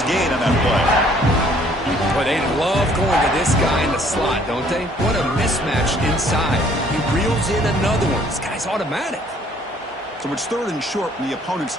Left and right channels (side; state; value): both; normal; correlation 0.60